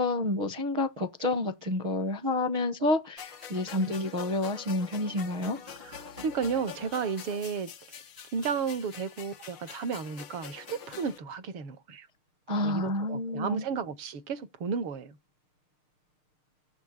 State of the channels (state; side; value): late; left; 6.6 ms